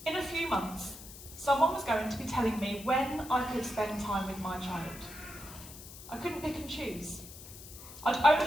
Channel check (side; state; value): left; noise; hiss, 15 dB below the sound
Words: In a few months, someone was going to be telling me when I could spend time with my child. I couldn't pick and choose. I'd